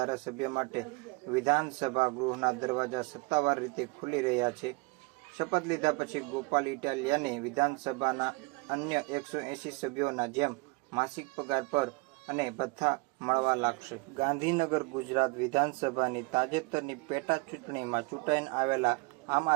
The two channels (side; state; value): left; quieter; 27.3 dB